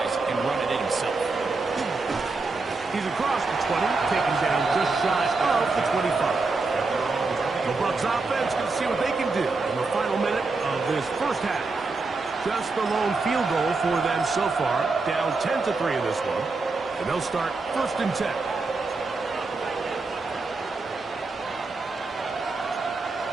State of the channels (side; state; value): left; quieter; 3.8 dB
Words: and run it in himself. He's across the 20, taken down just shy of the 25. The Bucs offense can see what they can do in the final minute of this first half. Just the lone field goal for them so far, down 10-3 in this one, and they'll start first and 10.